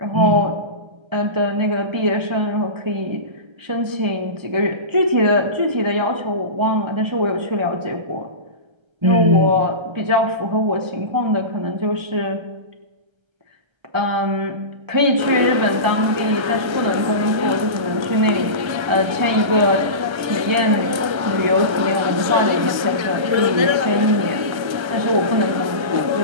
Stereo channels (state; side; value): late; left; 1.3 ms